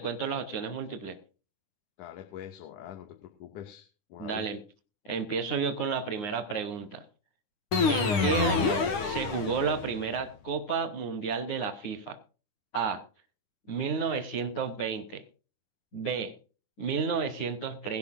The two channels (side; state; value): right; late; 9.9 ms